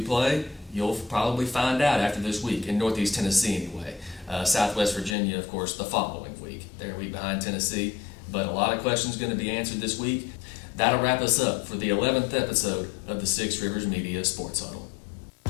play? You'll probably find out after this week in Northeast Tennessee anyway. Southwest Virginia, of course, the following week. They're a week behind Tennessee, but a lot of questions going to be answered this week. That'll wrap us up for the 11th episode of the Six Rivers Media Sports Huddle.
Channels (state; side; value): drops out; right; at 5.2 s